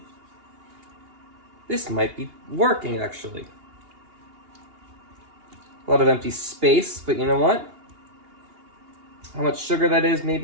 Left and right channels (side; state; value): left; late; 2.8 ms